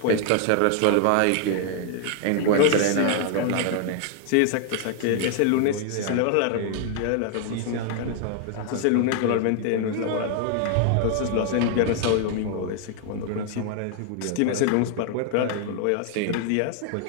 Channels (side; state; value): both; different; correlation 0.00